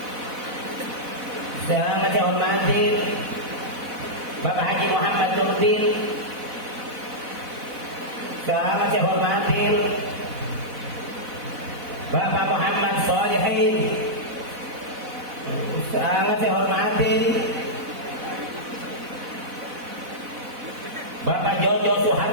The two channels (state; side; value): late; left; 4.1 ms